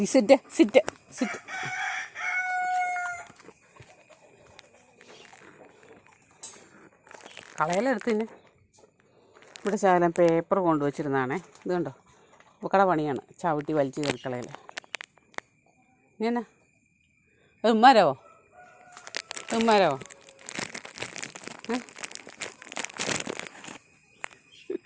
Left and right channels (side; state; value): both; identical; correlation 1.00